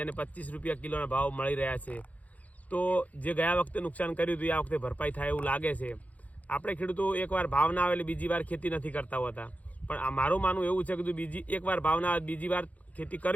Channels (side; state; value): right; late; 0.072 ms